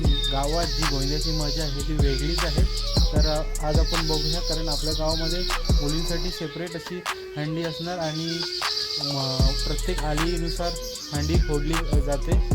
गावात जी गोविंद्याची मजा आहे ती वेगळीच आहे। तर आज आपण बघूया, कारण आपल्या गावामध्ये मुलींसाठी सेपरेट अशी हंडी असणार आणि प्रत्येक आलीनुसार हंडी फोडली जाते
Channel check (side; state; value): both; identical; correlation 1.00